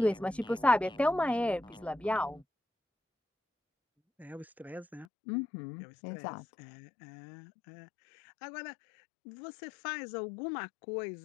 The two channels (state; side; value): drops out; right; at 5.1 s